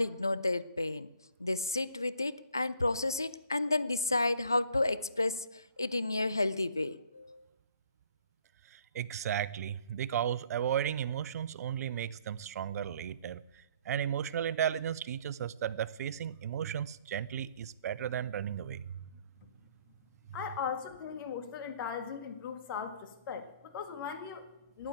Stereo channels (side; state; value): both; inverted; correlation -0.61